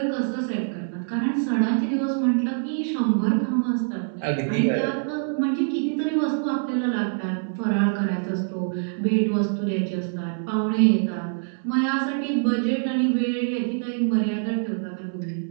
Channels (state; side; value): silent; left; 58 dB below the other